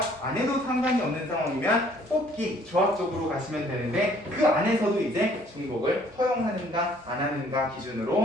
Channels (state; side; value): normal; both; correlation 0.60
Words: 안 해도 상관이 없는 상황이면 뽑기, 조합 쪽으로 가시면 되는데 그 안에서도 이제 중복을 허용하는가 안 하는가